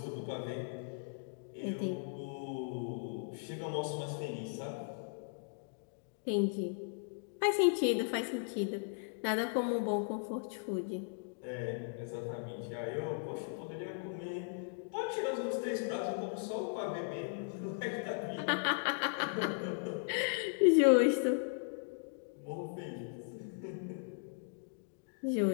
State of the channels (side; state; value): right; silent; digital silence